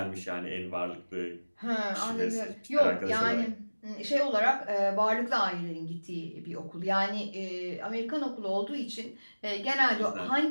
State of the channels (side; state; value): both; inverted; correlation -1.00